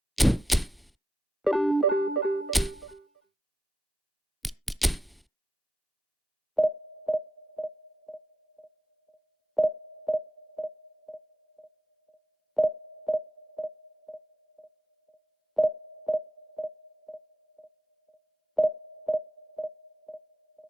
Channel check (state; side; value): normal; both; correlation 0.86